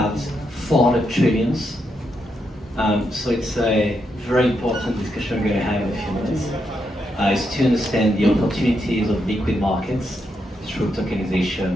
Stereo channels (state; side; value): normal; both; correlation 0.81